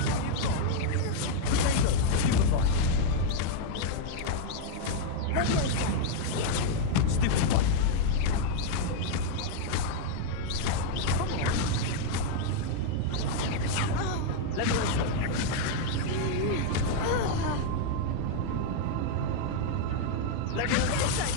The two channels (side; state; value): both; different; correlation 0.00